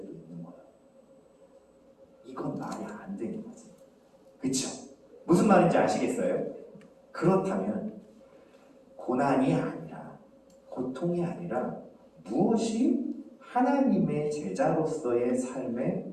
있는 거야. 이건 말이 안 되는 거지. 그쵸? 무슨 말인지 아시겠어요? 그렇다면 고난이 아니라, 고통이 아니라 무엇이 하나님의 제자로서의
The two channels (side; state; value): both; identical; correlation 1.00